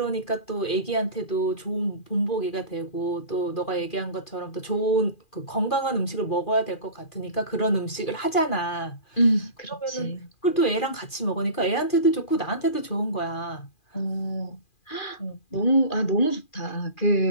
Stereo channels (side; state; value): right; late; 2.4 ms